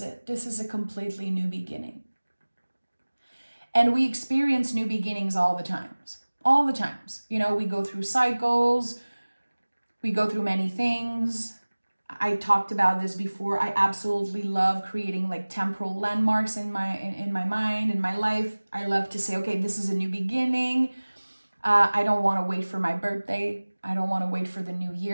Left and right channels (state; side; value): inverted; both; correlation -1.00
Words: This is a completely new beginning. And we experience new beginnings all the times. All the times. You know, we go through cycles. We go through many things. I talked about this before. I absolutely love creating like temporal landmarks in my mind, in my life. I love to say, okay, this is a new beginning. I don't want to wait for my birthday. I don't want to wait for the new